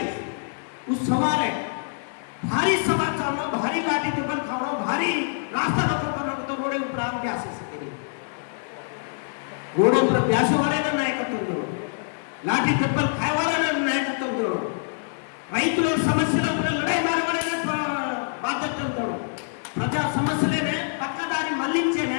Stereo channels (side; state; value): right; silent; 62 dB below the other